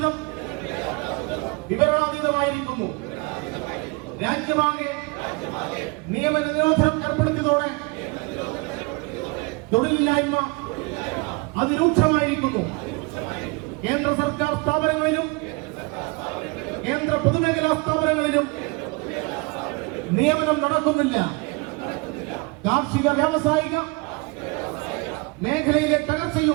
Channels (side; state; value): left; quieter; 28.0 dB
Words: വിവരണാതീതമായിരിക്കുന്നു. രാജ്യമാകെ നിയമന നിരോധനം ഏർപ്പെടുത്തിയതോടെ തൊഴിലില്ലായ്മ അതിരൂക്ഷമായിരിക്കുന്നു. കേന്ദ്ര സർക്കാർ സ്ഥാപനങ്ങളിലും കേന്ദ്ര പൊതുമേഖലാ സ്ഥാപനങ്ങളിലും നിയമനം നടക്കുന്നില്ല. കാർഷിക വ്യാവസായിക മേഖലയിലെ